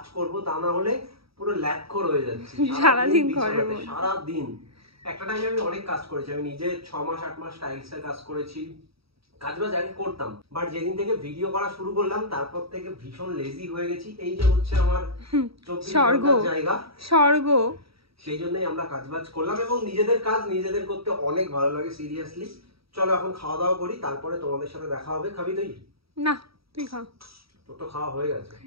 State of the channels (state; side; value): late; left; 0.76 ms